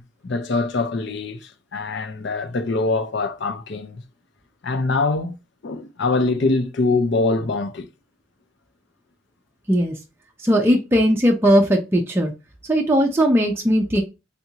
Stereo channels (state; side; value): normal; both; correlation 0.63